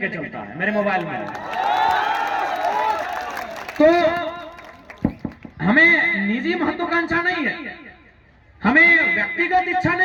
चलता है, मेरे मोबाइल में। तो हमें निजी महत्वाकांक्षा नहीं है, हमें व्यक्तिगत इच्छा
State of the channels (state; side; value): identical; both; correlation 1.00